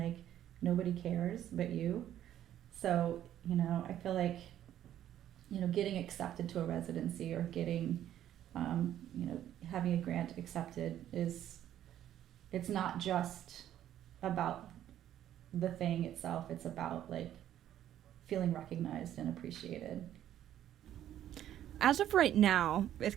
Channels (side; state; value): left; quieter; 11.5 dB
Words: nobody cares but you. So, I feel like, getting accepted to a residency or getting, having a grant accepted it's not just about the thing itself. It's about like feeling recognized and appreciated. As of right now, it's